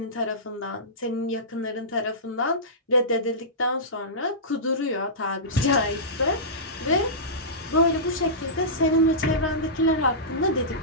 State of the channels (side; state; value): both; normal; correlation -0.18